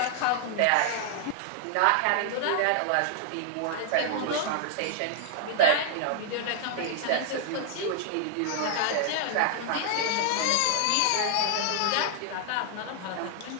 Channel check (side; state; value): both; different; correlation 0.00